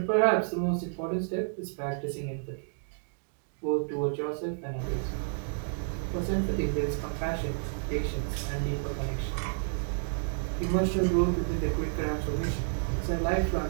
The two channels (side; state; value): left; silent; digital silence